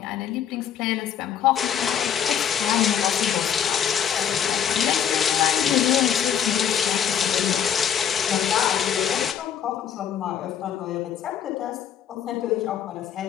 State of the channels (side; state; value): right; quieter; 8.9 dB